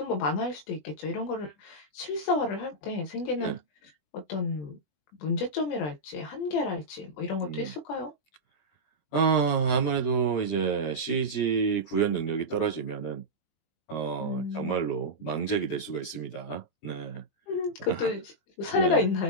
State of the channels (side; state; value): right; late; 20 ms